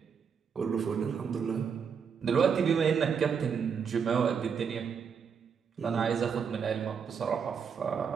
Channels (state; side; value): quieter; left; 6.7 dB